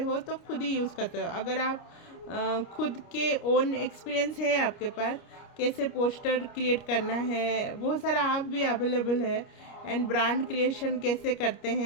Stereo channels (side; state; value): right; late; 29 ms